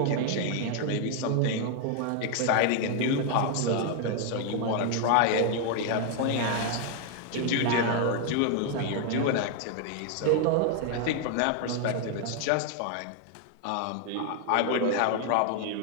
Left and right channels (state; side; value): different; both; correlation 0.00